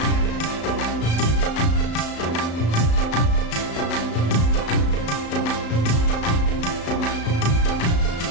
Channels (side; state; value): right; late; 35 ms